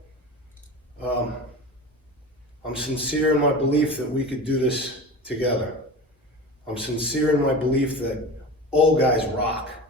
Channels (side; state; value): both; normal; correlation 0.32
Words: I'm sincere in my belief that we could do this together. I'm sincere in my belief that old guys rock.